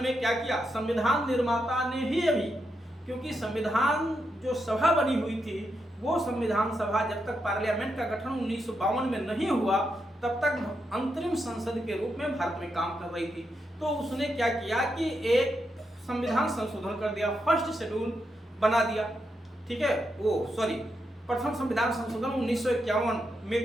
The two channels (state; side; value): normal; both; correlation 0.83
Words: में क्या किया? संविधान निर्माता ने ही अभी, क्योंकि संविधान जो सभा बनी हुई थी वो संविधान सभा जब तक पार्लियामेंट का गठन 1952 में नहीं हुआ तब तक अंतरिम संसद के रूप में भारत में काम कर रही थी। तो उसने क्या किया कि एक संविधान संशोधन कर दिया, फर्स्ट शेड्यूल बना दिया, ठीक है, प्रथम संविधान संशोधन 1951